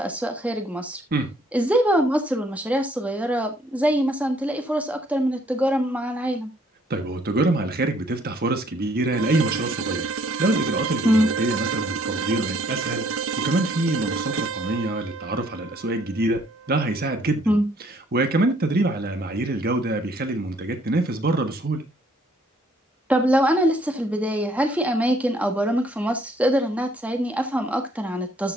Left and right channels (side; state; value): both; normal; correlation 0.64